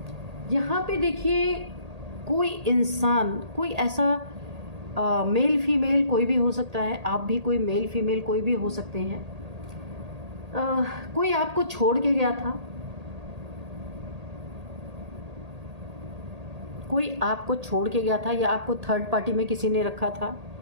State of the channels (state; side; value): late; left; 1.8 ms